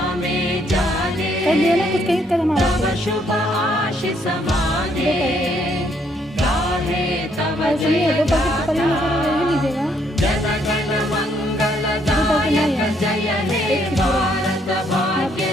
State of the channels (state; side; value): normal; both; correlation 0.70